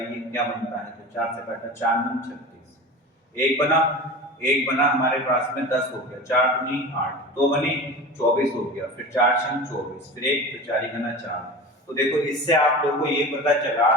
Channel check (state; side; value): normal; both; correlation 0.32